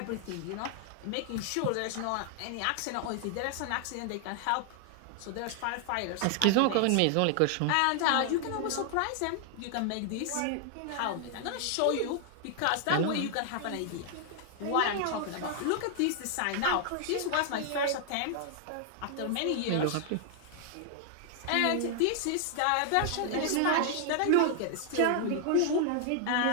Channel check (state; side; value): different; both; correlation 0.00